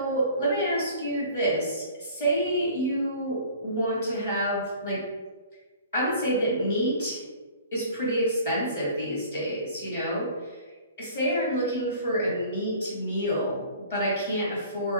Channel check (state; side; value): inverted; both; correlation -0.47